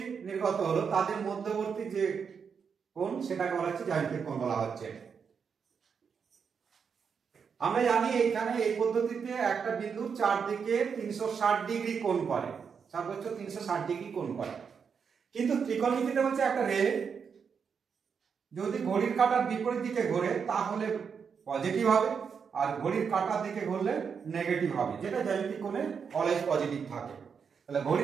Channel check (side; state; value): left; quieter; 6.4 dB